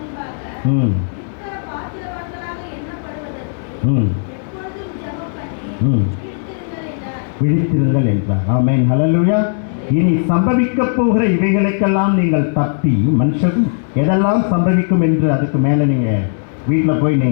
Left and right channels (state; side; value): silent; right; 62 dB below the other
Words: விழித்திருங்கள் என்றார். ஆமென், ஹல்லேலூயா. இனி சம்பவிக்க போகிற இவைகளுக்கெல்லாம் நீங்கள் தப்பி, மனுஷனும் எதெல்லாம் சம்பவிக்கும் என்று அதுக்கு மேலே நீங்கள் வீட்டில் போய்